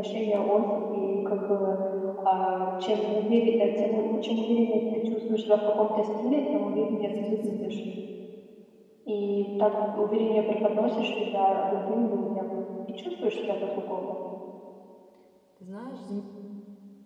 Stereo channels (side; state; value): both; identical; correlation 1.00